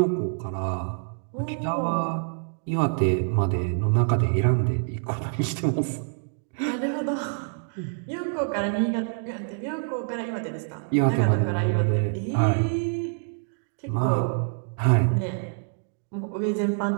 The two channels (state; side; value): silent; left; digital silence